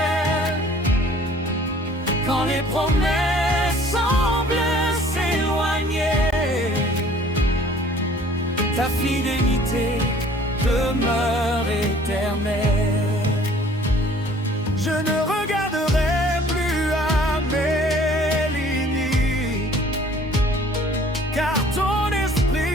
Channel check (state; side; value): normal; both; correlation 0.53